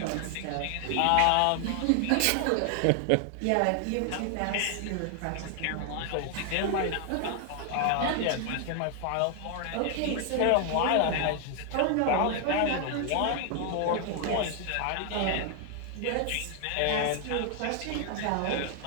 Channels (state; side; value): different; both; correlation 0.00